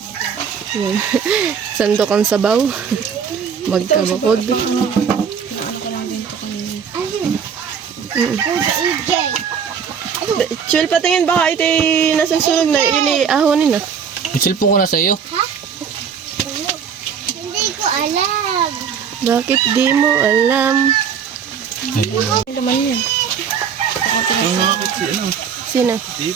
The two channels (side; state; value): left; quieter; 7.1 dB